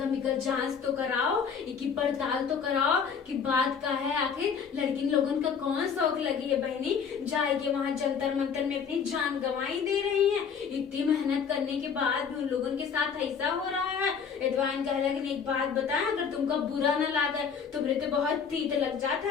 इनका जांच तो कराओ, इनकी पड़ताल तो कराओ कि बात का है। आखिर लड़की लोगों का कौन शौक लगी है बहनी जाए के वहां जंतर मंतर में अपनी जान गंवाई दे रही है। इतनी मेहनत करने के बाद उन लोगों के साथ ऐसा हो रहा है। एडवाइन कह लगे, एक बात बताएं, अगर तुमको बुरा न लगे तो मेरे तो बहुत तीत लग जाता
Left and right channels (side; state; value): right; quieter; 6.6 dB